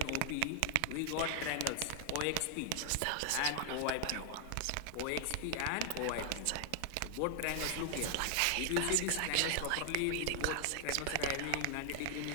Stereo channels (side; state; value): both; different; correlation 0.00